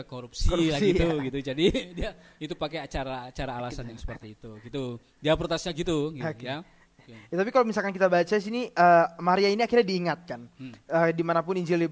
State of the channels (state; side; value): identical; both; correlation 1.00